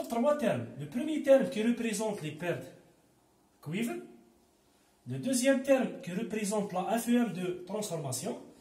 3 termes. Le premier terme qui représente les pertes cuivre, le deuxième terme qui représente la FEM de transformation,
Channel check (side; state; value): both; identical; correlation 1.00